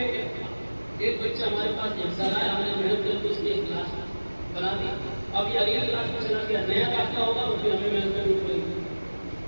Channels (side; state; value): both; inverted; correlation -1.00